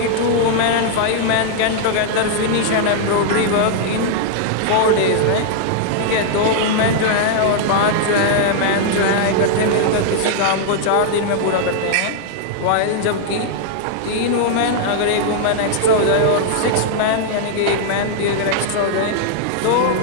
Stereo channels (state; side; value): different; both; correlation -0.01